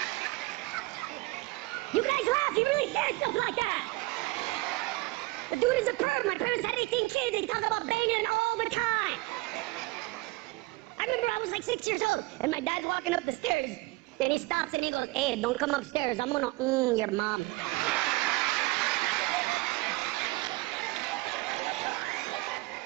You guys laugh. He really said stuff like that. The dude is a perv. My parents had 18 kids. They talk about banging all the time. I remember I was like 6 years old, and my dad's walking up the stairs, and he stops and he goes, hey, don't come upstairs. I'm gonna your mom.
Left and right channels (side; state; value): left; quieter; 22.4 dB